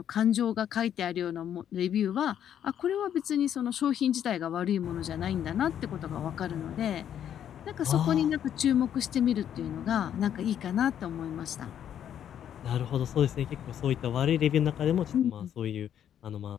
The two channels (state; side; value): quieter; right; 9.8 dB